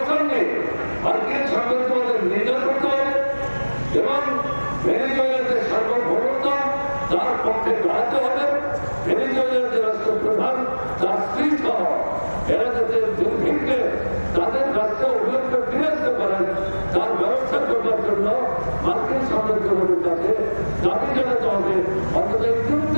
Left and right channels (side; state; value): both; inverted; correlation -1.00